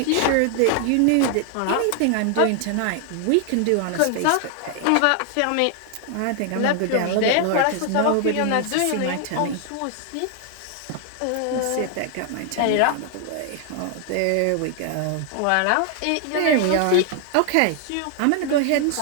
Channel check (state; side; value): different; both; correlation 0.00